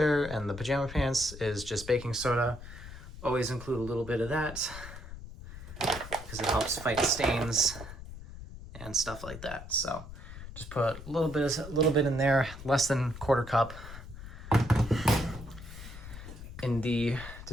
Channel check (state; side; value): noise; left; rumble, 13 dB below the sound